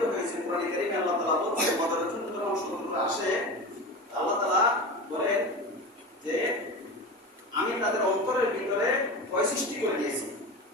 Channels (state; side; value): normal; both; correlation 0.27